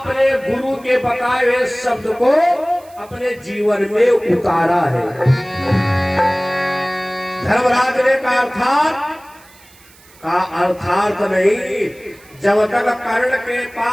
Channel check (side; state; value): right; noise; hiss, 26 dB below the sound